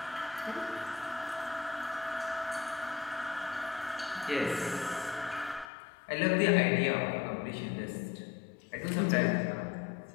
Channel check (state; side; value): drops out; right; at 5.7 s